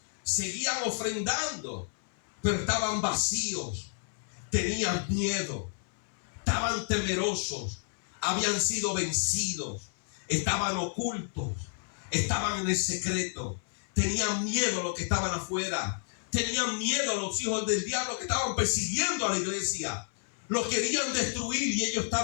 seguían ofrendando, pero estaban vacíos, tenían miedo, estaban temerosos, habían sido vencidos, estaban ocultos, estaban en el secreto, tenían miedo a los que estaban afuera, tenían miedo a los hijos del diablo que estaban persiguiendo a la iglesia, los querían destruir y ellos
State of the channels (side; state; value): right; silent; 57 dB below the other